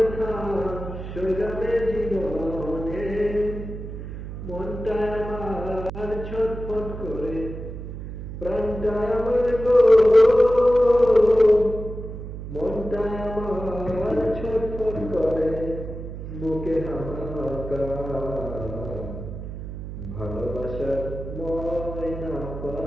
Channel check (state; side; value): noise; right; hum, 9 dB below the sound